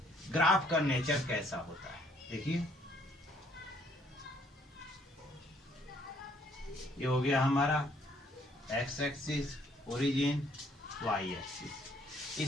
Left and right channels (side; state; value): both; normal; correlation 0.65